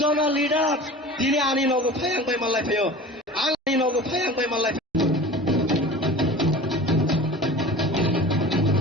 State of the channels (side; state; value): both; normal; correlation 0.38